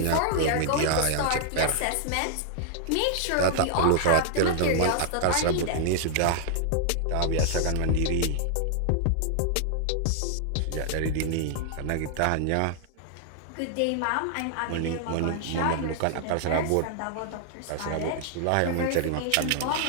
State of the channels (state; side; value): different; both; correlation 0.00